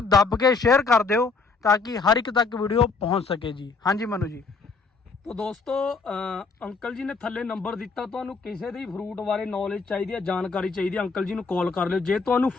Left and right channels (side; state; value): right; quieter; 4.5 dB